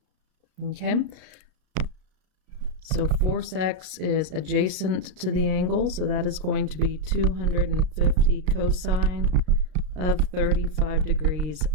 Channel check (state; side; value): late; left; 33 ms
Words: Okay, so force x is adjacent to the angle, so that is going to be 250 cosine of 35 degrees